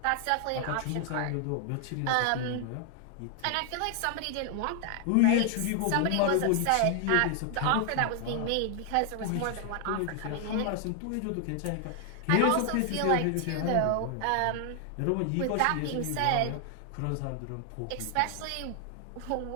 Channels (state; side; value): different; both; correlation 0.00